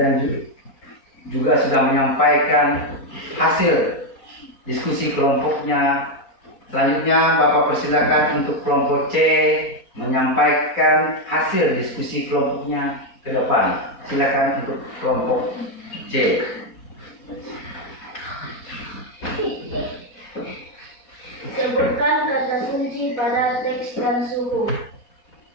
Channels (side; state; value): right; late; 4.1 ms